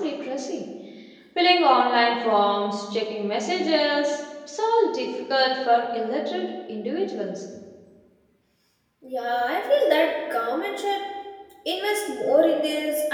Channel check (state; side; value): identical; both; correlation 1.00